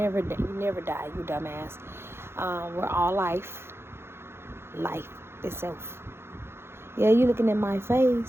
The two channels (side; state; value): left; late; 0.12 ms